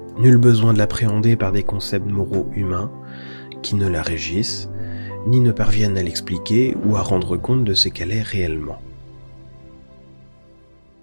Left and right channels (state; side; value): inverted; both; correlation -1.00